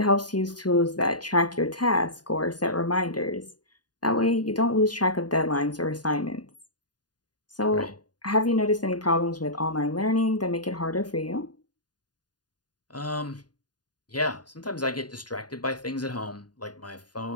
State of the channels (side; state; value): right; late; 0.70 ms